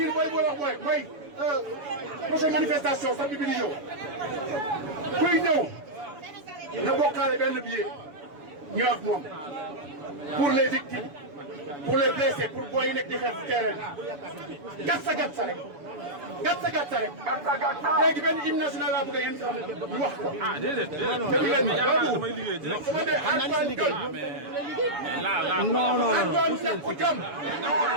mooy mooy prochaine manifestation samedi bi di ñëw kuy ñëw na bokkaale benn billet ñu ak moom pour les victimes pour les blessés pour booy yi nekk di xeex terrain bi gat sa rek gàtta gàtta rek. léegi benn hymne national laa bëgg a yéen xam ñu wax ko. ah déedéet damay liggéey direct. su ma dee Antoine Diome. Antoine Ñàkku Jom.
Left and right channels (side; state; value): left; late; 7.0 ms